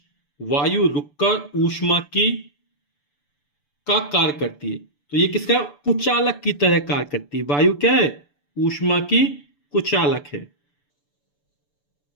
वायु रुककर ऊष्मा की का कार्य करती है, तो ये किसका? कुचालक की तरह कार्य करती है। वायु क्या है? ऊष्मा की कुचालक है।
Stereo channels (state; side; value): late; right; 6.9 ms